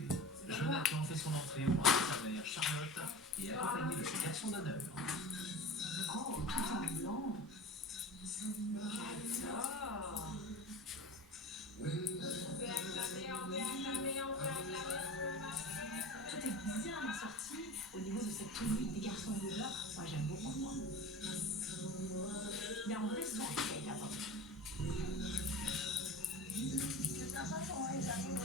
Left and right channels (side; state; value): both; normal; correlation 0.34